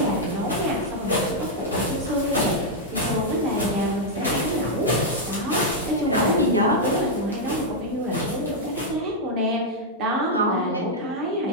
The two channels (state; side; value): normal; both; correlation -0.03